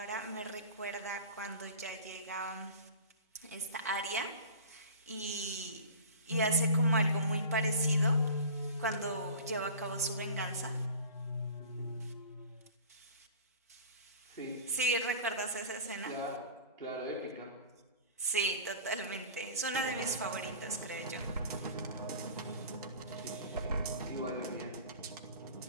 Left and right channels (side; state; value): both; inverted; correlation -0.38